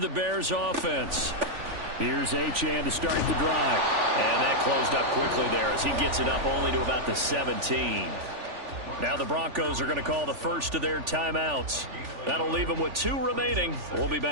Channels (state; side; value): late; left; 3.4 ms